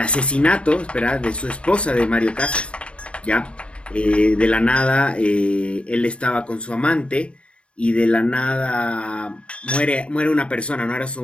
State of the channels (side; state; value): right; late; 0.059 ms